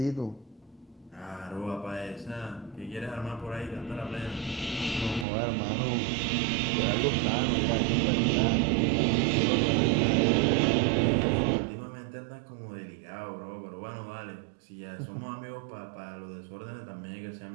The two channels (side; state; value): left; drops out; at 5.2 s